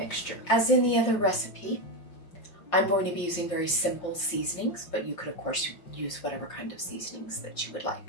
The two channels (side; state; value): right; late; 5.7 ms